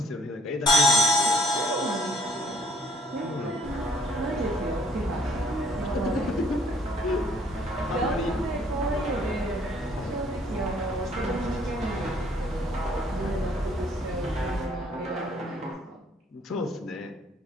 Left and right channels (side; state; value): both; normal; correlation 0.60